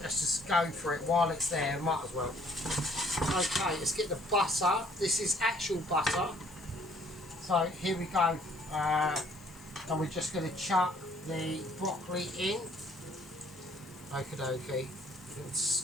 let's just go for it while it's there, might as well. Okay, let's get the butter. This is actual butter. So here we go. And we're just going to chuck the broccoli in. Okie dokie.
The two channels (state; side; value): noise; left; hiss, 24 dB below the sound